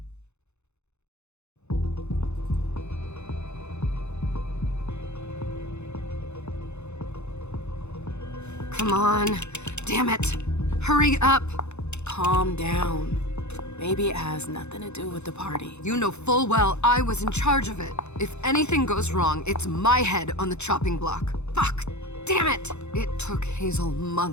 Come on. Damn it. Hurry up. Calm down. Maybe it has nothing to do with the party. You know full well I was in charge of it. If anything goes wrong, it's my head on the chopping block. Fuck! Damn it! It took Hazel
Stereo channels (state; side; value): late; right; 0.81 ms